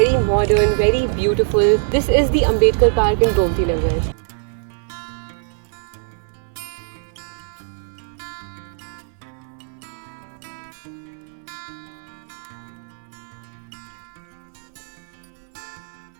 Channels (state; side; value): silent; left; 64 dB below the other